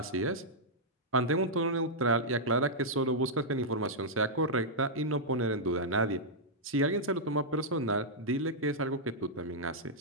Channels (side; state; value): both; normal; correlation -0.08